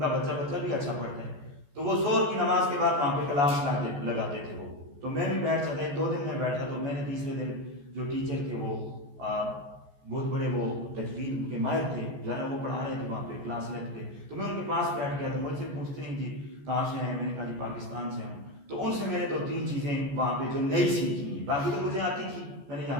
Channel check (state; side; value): late; left; 14 ms